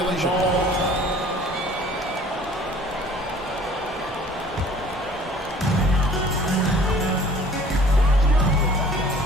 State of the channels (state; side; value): normal; both; correlation 0.51